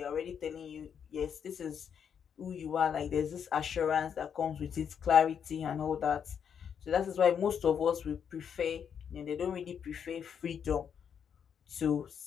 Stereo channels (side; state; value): right; quieter; 7.7 dB